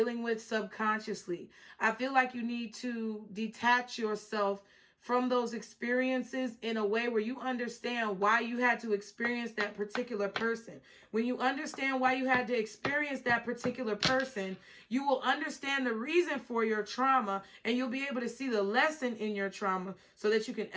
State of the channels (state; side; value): identical; both; correlation 1.00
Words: with subconsciously. I feel like you need to detach yourself from those experiences in a way where you understand why you had to experience that particular person. When you understand why you had to experience that particular person, you will understand the reason for your trauma, and you'll be able to see the lesson in your trauma so that you can